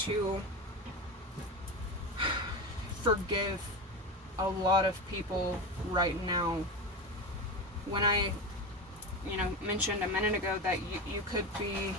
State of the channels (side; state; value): both; normal; correlation 0.21